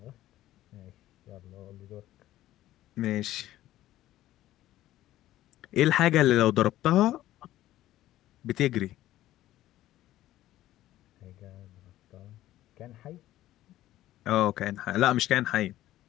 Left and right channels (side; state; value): right; quieter; 14.4 dB